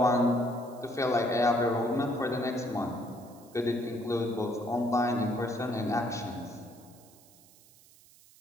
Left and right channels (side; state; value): right; noise; hiss, 26 dB below the sound